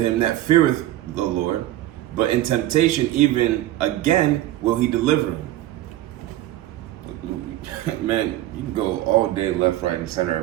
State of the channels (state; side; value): quieter; left; 14.7 dB